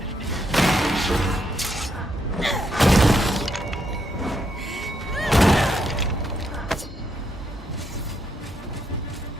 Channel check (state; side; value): normal; both; correlation 0.77